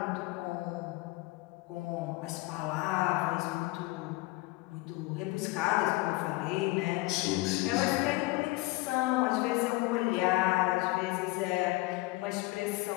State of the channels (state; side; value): quieter; right; 21.7 dB